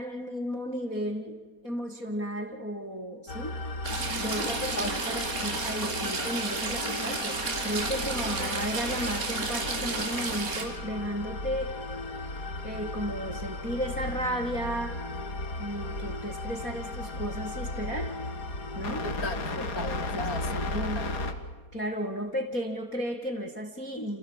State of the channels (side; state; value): right; late; 4.3 ms